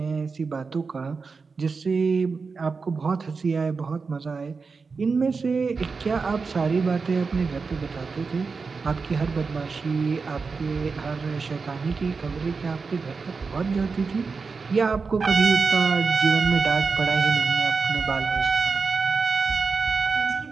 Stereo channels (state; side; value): quieter; left; 4.7 dB